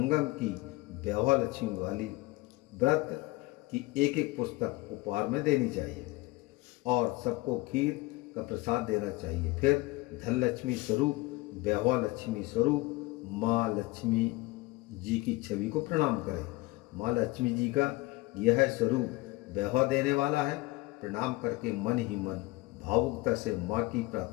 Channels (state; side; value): quieter; right; 21.1 dB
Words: की वैभव लक्ष्मी वाली व्रत की एक पुस्तक उपहार में देनी चाहिए और सबको खीर का प्रसाद देना चाहिए। फिर धन लक्ष्मी स्वरूप वैभव लक्ष्मी स्वरूप माँ लक्ष्मी जी की छवि को प्रणाम करें। माँ लक्ष्मी जी का यह स्वरूप वैभव देने वाला है। प्रणाम करके मन ही मन भावुकता से माँ की